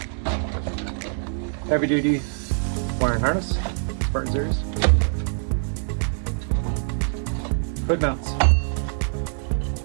Heavy duty wiring harness, Spartan Series. Hood mounts.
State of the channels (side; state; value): left; silent; 62 dB below the other